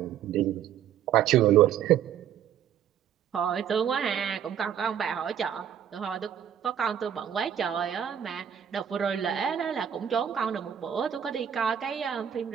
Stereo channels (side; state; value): left; quieter; 9.3 dB